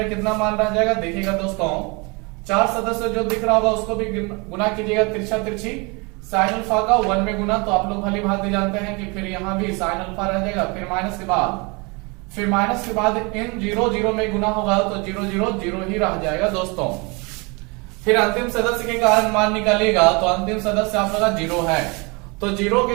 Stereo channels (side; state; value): left; quieter; 28.9 dB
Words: कितना मान रह जाएगा? देखिएगा दोस्तों, 4 सदस्य जो दिख रहा होगा उसको भी गुना कीजिएगा तिरछा तिरछी। साइन अल्फा का 1 में गुना, तो आप लोग भली भांति जानते हैं कि फिर यहाँ भी साइन अल्फा रह जाएगा। फिर माइनस के बाद इन 0 0 में गुना होगा तो 0 0 0 ही रह जाएगा दोस्तों। फिर अंतिम सदस्य के कारण मान निकालिएगा तो अंतिम सदस्य आप लोग 0 है, तो 0